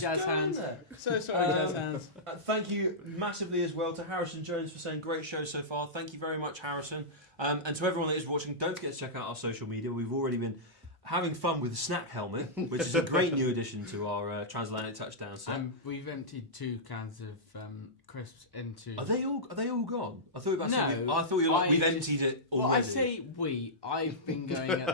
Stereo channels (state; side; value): normal; both; correlation -0.13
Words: Jazz go in Hands. there. So sorry, Jazz Hands. Thank you massively as well to Harrison Jones for saying great show so far. Thank you very much, Harrison. And to everyone that is watching, don't forget to check out our social media. We've already been having fun with the snack helmet, which is a great new addition to our Transatlantic touchdown set. We've emptied 2 cans of crisps into... Are they all gone? I thought you were No, we've emptied it already. Well, I say we. I've been going